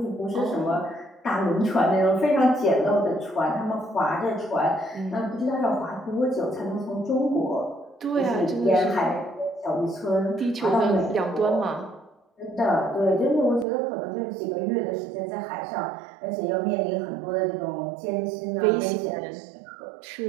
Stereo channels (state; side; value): drops out; left; at 13.7 s